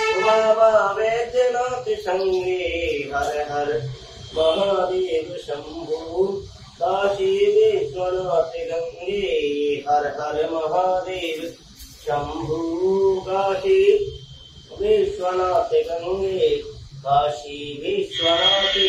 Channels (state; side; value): identical; both; correlation 1.00